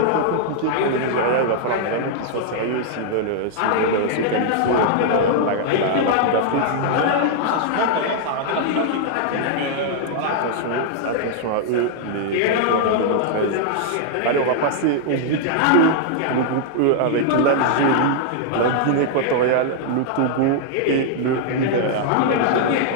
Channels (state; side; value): different; both; correlation -0.01